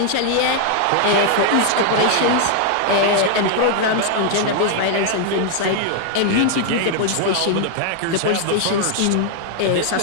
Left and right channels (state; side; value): different; both; correlation 0.00